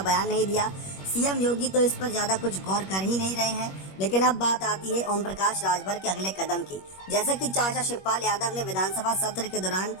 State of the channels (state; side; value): late; right; 21 ms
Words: बयान नहीं दिया। सीएम योगी तो इस पर ज्यादा कुछ गौर कर ही नहीं रहे हैं। लेकिन अब बात आती है ओम प्रकाश राजभर के अगले कदम की। जैसा कि चाचा शिवपाल यादव ने विधानसभा सत्र के दौरान